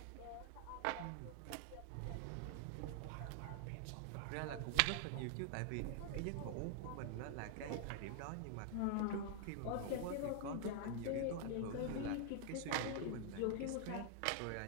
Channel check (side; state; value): both; different; correlation 0.00